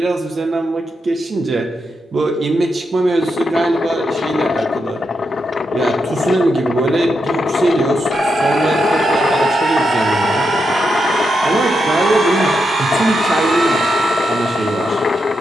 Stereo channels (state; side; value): normal; both; correlation 0.84